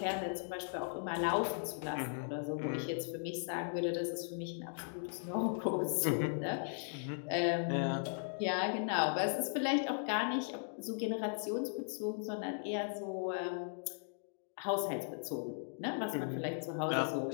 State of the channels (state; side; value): silent; right; digital silence